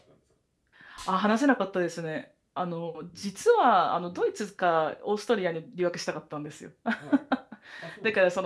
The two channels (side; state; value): both; identical; correlation 1.00